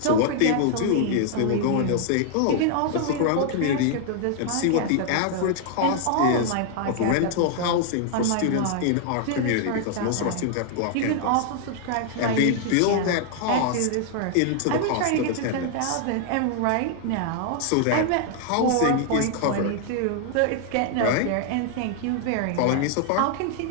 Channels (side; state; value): both; different; correlation 0.00